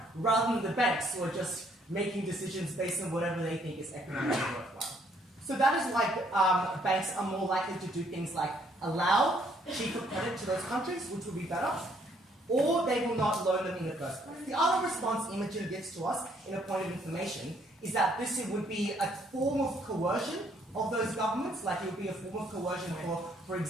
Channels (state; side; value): normal; both; correlation 0.67